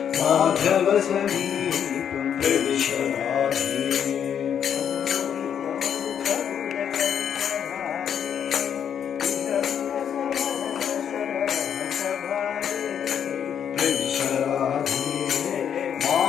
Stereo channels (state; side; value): quieter; right; 8.5 dB